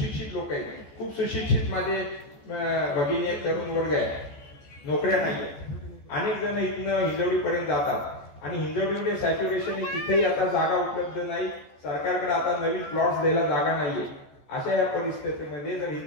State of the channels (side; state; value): right; late; 14 ms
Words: लोक आहेत, खूप सुशिक्षित माझे भगिनी आहेत, तरुण वर्ग आहे, नोकऱ्या नाही आहेत. अनेक जण इथनं हिंजवडीपर्यंत जातात आणि हिंजवडीमध्ये सॅच्युरेशन तिथेही आता जागा उपलब्ध नाही. सरकारकडे आता नवीन प्लॉट्स द्यायला जागा नाहीये. अशा या परिस्थितीमध्ये जर